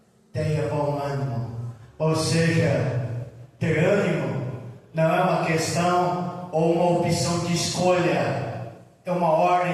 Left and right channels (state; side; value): identical; both; correlation 1.00